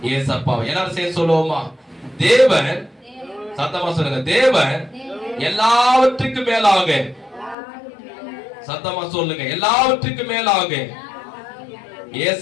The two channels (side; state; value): right; drops out; at 7.6 s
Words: ஏசப்பா. எல்லாரும் சேர்ந்து சொல்லுவோமா? தேவன், சத்தமா சொல்லுங்க, தேவன் எல்லாவற்றுக்கும் மேலாக, சத்தமா சொல்லுங்க, எல்லாவற்றுக்கும் மேலாக